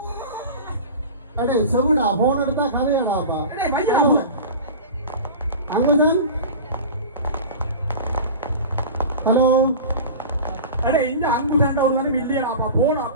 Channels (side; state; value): both; inverted; correlation -0.32